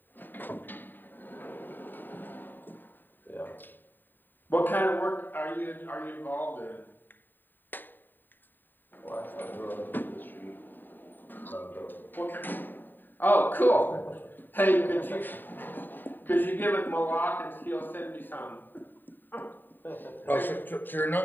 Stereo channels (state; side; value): late; right; 0.091 ms